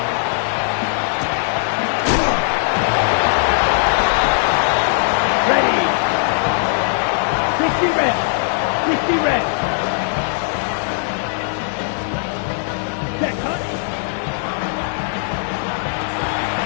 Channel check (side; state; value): right; silent; digital silence